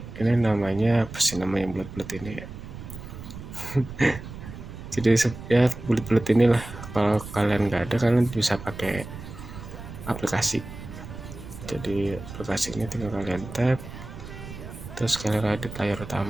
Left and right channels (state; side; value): noise; right; rumble, 12 dB below the sound